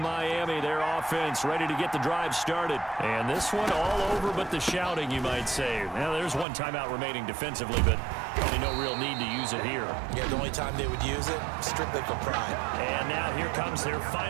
their offense ready to get the drive started. And this one all over but the shouting, you might say. Now, there's one timeout remaining defensively, but probably no real need to use it here. Yeah, the only time they would use it, strictly for pride. And now here comes their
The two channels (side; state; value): left; drops out; at 6.5 s